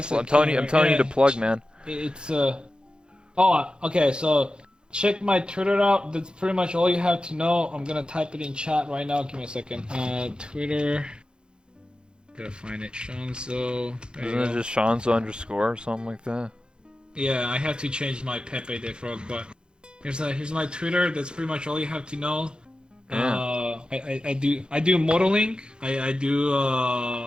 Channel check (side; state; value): left; late; 0.050 ms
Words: I'm telling you to plug, man. It's okay. So check my Twitter out. That's pretty much all you have to know. I'm gonna type it in chat right now. Give me a second. Twitter. Gotta find it. Shonzo. Isn't it just Shonzo underscore or something like that? Yeah, I have to change my Pepe the Frog, but here's my Twitter. That's pretty much all you have to know. Yeah. I do modeling. I